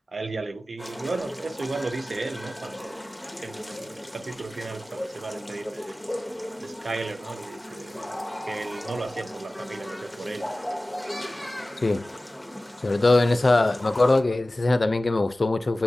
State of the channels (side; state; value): both; normal; correlation 0.97